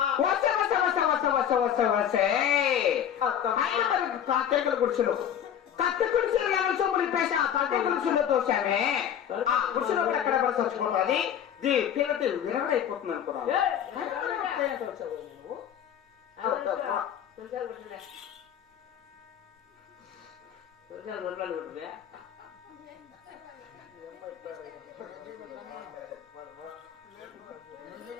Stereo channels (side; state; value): right; quieter; 9.4 dB